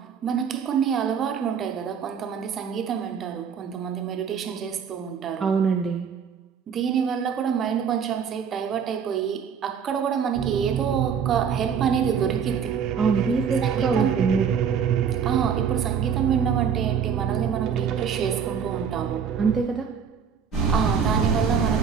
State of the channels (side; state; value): left; quieter; 7.1 dB